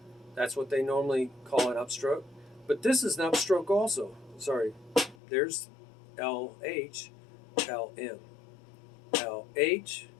That's what they normally call an upstroke. But this is an upstroke also. Sorry. There's LH, LM. LH,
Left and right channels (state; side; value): drops out; right; at 5.2 s